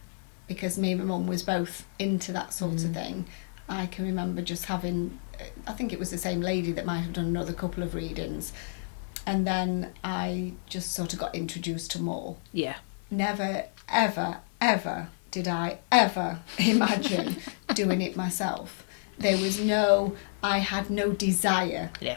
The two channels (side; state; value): right; silent; digital silence